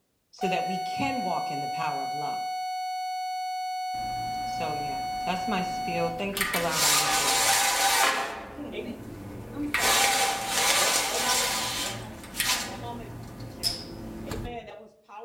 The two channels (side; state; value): both; identical; correlation 1.00